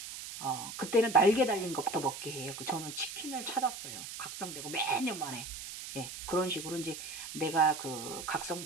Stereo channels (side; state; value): right; noise; hiss, 9 dB below the sound